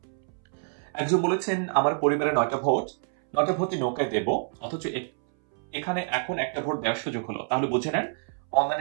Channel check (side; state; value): left; silent; 60 dB below the other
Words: একজন বলেছেন আমার পরিবারে 9টা ভোটই নৌকায় দেব, অথচ এখানে এখন একটা ভোট দেওয়ার সুযোগ হলো, তাহলে বুঝে নেন